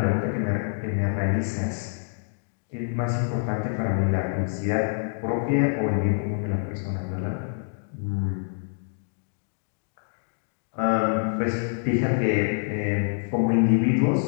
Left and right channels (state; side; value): silent; right; digital silence